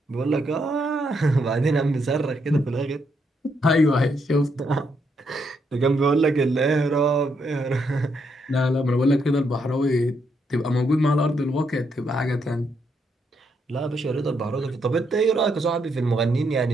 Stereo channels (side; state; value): both; normal; correlation 0.77